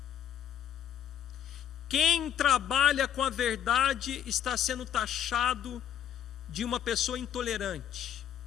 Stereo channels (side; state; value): right; quieter; 9.9 dB